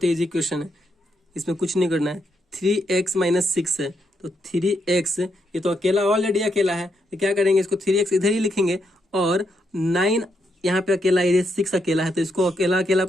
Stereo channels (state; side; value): normal; both; correlation 0.79